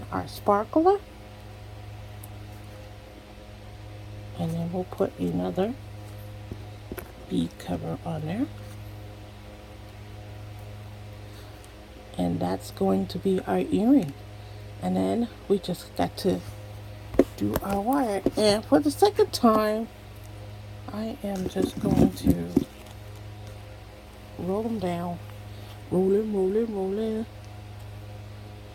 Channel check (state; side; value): identical; both; correlation 1.00